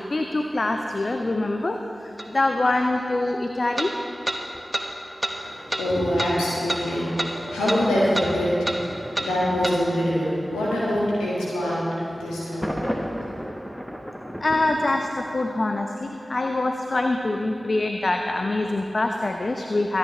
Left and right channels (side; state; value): both; normal; correlation 0.95